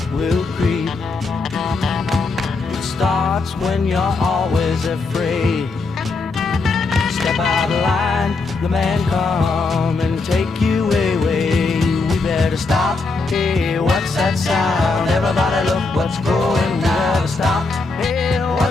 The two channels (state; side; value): quieter; right; 3.8 dB